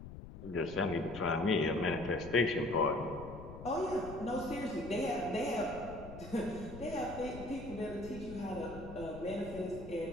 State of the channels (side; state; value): left; noise; rumble, 12 dB below the sound